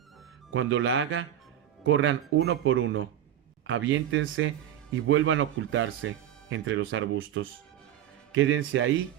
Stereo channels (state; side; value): quieter; left; 11.1 dB